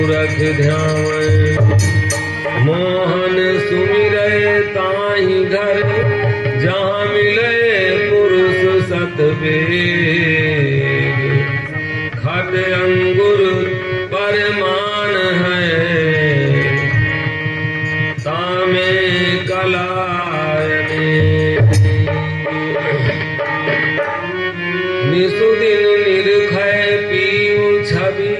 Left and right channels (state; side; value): identical; both; correlation 1.00